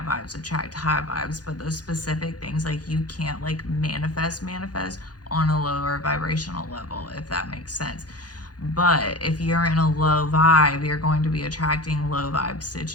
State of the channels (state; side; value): late; right; 0.69 ms